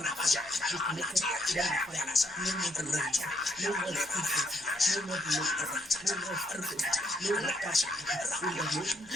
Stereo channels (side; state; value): left; noise; hum, 28 dB below the sound